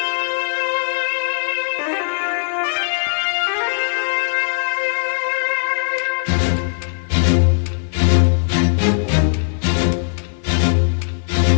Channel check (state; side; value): silent; right; digital silence